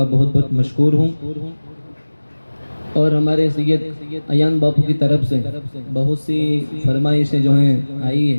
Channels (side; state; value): both; inverted; correlation -1.00